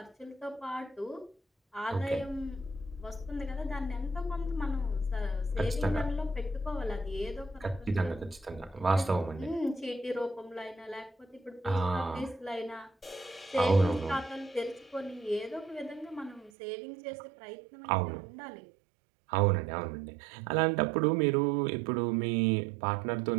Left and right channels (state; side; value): drops out; left; at 16.5 s